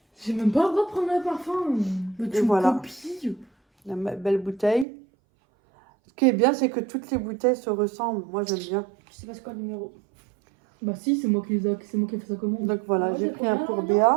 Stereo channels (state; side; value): drops out; left; at 4.9 s